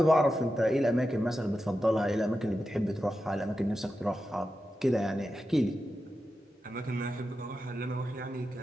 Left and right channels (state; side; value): normal; both; correlation 0.90